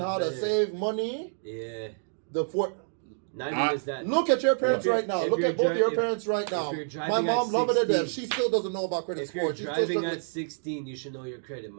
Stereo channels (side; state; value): left; silent; digital silence